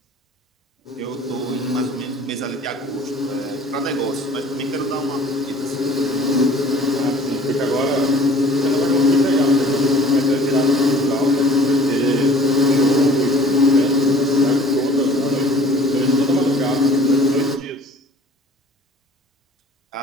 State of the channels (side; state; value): both; normal; correlation 0.50